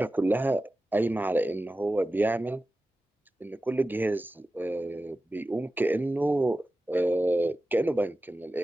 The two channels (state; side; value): normal; both; correlation 0.94